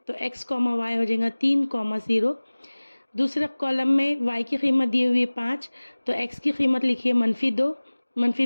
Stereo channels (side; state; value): both; inverted; correlation -1.00